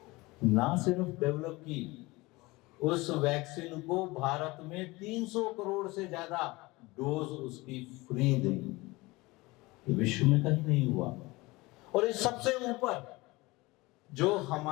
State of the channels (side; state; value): right; quieter; 22.1 dB